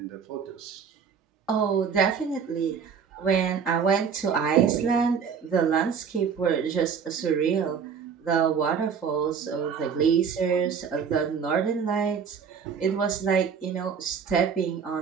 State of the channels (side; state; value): left; quieter; 6.6 dB